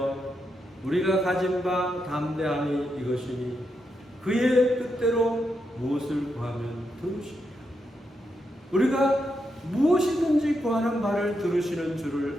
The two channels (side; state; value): both; normal; correlation 0.83